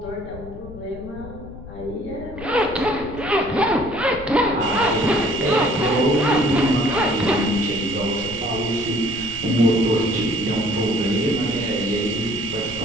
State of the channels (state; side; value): noise; left; rumble, 15 dB below the sound